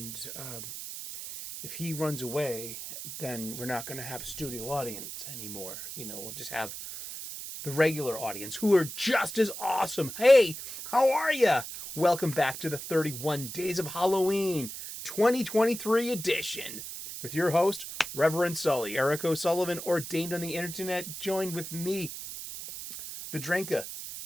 if he runs away, then we're not going to have a studio audience anymore. We'll just have the regular audience who are just as awesome. Hey, how are you? Welcome back to the 31 Days of Halloween 2023 edition with your host, Reverend Sully, Eric O'Sullivan, ordained on the internet, joined with me, the Drinka,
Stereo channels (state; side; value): noise; right; hiss, 9 dB below the sound